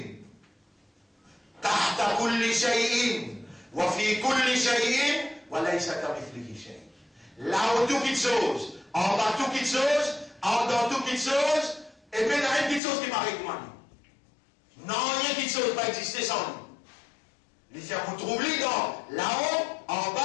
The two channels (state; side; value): drops out; right; at 12.8 s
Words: Tahta kulli shay'in. Wa fi kulli shay'in. Wa laysa kamithlihi shay'. Là où tout quelque chose, en bas tout quelque chose, en dedans tout quelque chose, et puis il y a une petite chose qui m'arrive moi. Non, il y a une petite chose qui va exister sans lui. Les gens vous trouvez dans là-haut, en